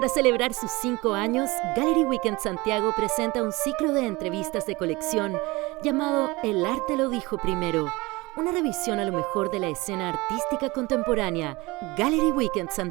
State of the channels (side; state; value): left; quieter; 22.8 dB